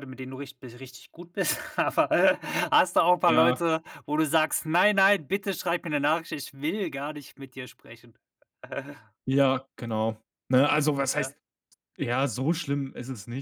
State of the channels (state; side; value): identical; both; correlation 1.00